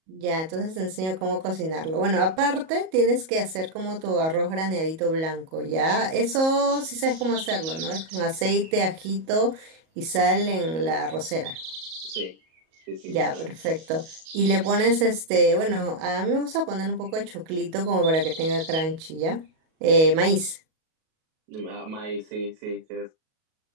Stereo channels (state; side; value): late; left; 37 ms